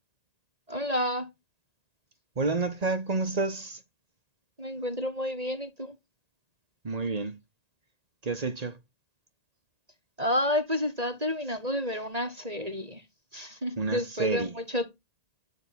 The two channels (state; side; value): late; left; 1.8 ms